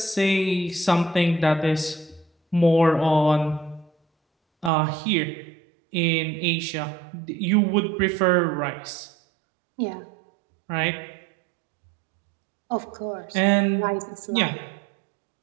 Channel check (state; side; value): drops out; left; at 4.7 s